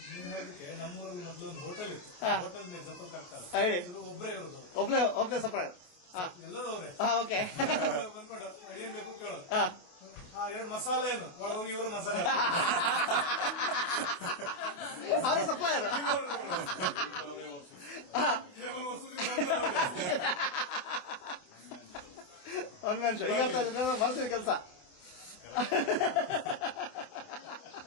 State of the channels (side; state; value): right; late; 27 ms